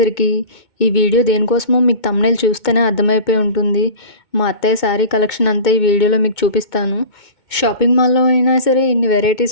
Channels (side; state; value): right; late; 2.2 ms